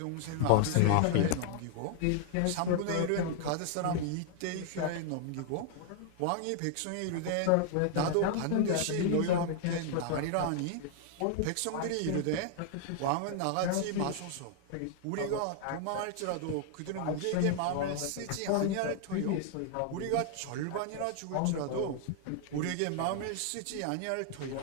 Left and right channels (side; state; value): both; different; correlation 0.00